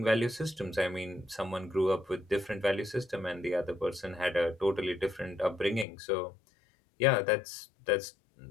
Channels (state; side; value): drops out; right; at 5.9 s